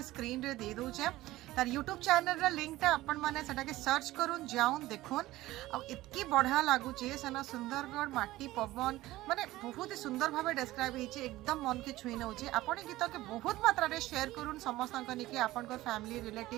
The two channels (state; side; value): quieter; left; 17.1 dB